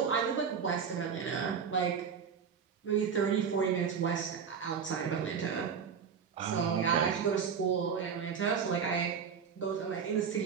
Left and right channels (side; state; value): left; quieter; 6.7 dB